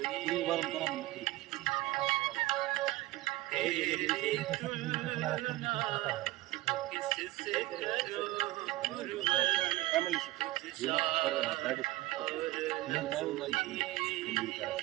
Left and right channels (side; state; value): left; quieter; 18.0 dB